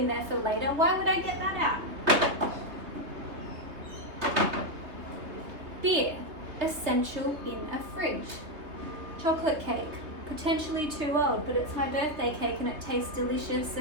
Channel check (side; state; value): left; late; 3.2 ms